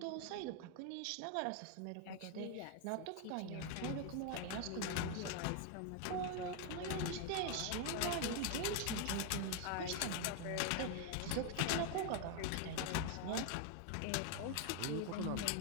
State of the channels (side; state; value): both; different; correlation 0.01